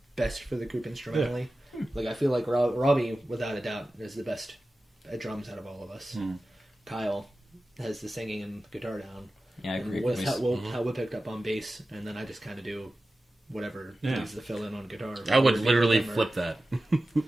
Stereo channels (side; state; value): both; normal; correlation 0.95